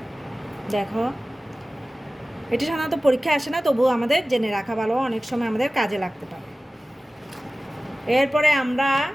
দেখো, এটা সাধারণত পরীক্ষায় আসে না, তবুও আমাদের জেনে রাখা ভালো, অনেক সময় আমাদের কাজে লাগতে পারে। এরপরে আমরা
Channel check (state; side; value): normal; both; correlation 0.97